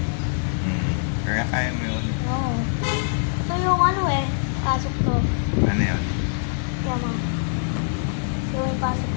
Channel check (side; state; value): right; silent; digital silence